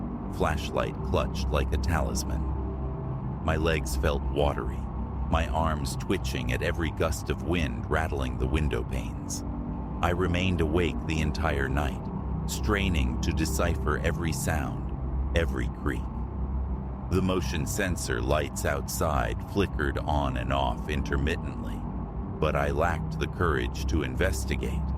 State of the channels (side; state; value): both; identical; correlation 1.00